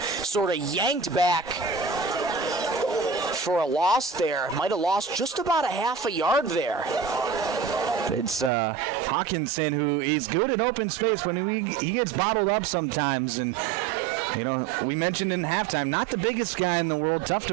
of yanked back for a loss there. Might have lost just about a half a yard there. It's Hawkinson, who is good in open space when he gets bottled up sometimes. And you know, we mentioned in halftime, not the biggest guy in the world. Tough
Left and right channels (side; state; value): left; drops out; at 8.5 s